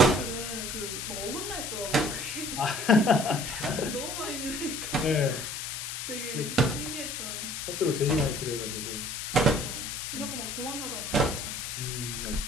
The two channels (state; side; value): noise; left; hiss, 5 dB below the sound